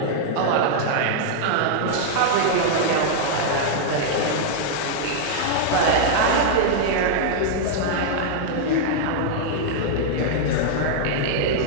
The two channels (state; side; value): different; both; correlation -0.01